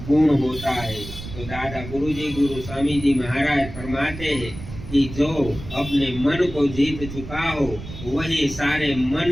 गुण होता है। तो दादा गुरुजी गुरु स्वामी जी महाराज फरमाते हैं कि जो अपने मन को जीत चुका हो वही सारे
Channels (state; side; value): noise; right; rumble, 12 dB below the sound